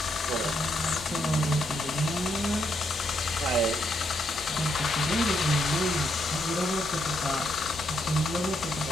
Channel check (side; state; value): both; normal; correlation 0.77